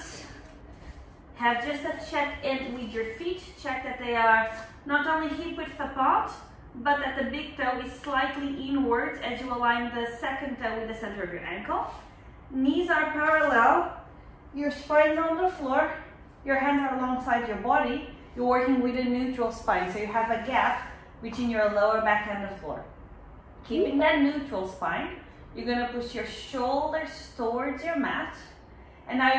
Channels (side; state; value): both; identical; correlation 1.00